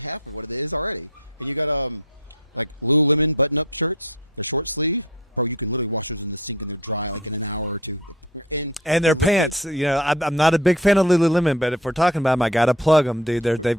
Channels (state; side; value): normal; both; correlation 0.39